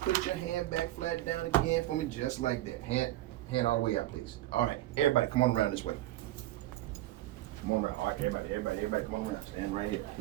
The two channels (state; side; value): quieter; left; 15.8 dB